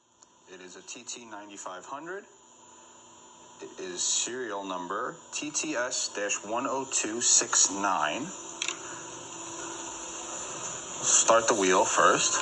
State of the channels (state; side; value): identical; both; correlation 1.00